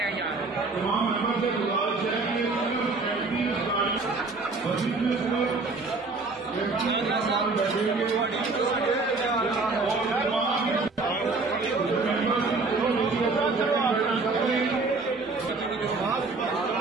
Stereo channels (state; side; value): quieter; left; 3.7 dB